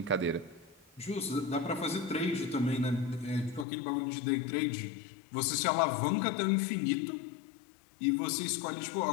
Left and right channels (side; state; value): right; drops out; at 3.7 s